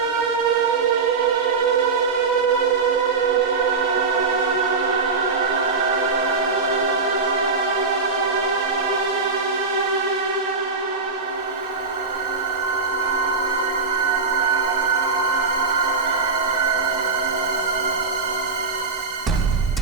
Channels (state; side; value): quieter; left; 4.5 dB